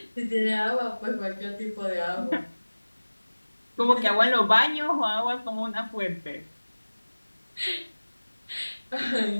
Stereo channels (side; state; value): both; inverted; correlation -1.00